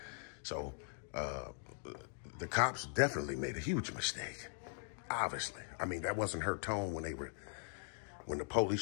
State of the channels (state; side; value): silent; right; 51 dB below the other